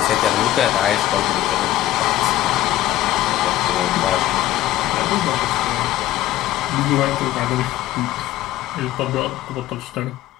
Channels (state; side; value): quieter; right; 14.4 dB